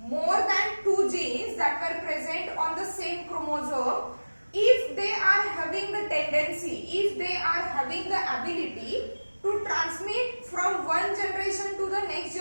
than 2 genes that were present on the same chromosome, if they are having the tendency, if they are having the ability to transmit from one generation to the next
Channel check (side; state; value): both; inverted; correlation -1.00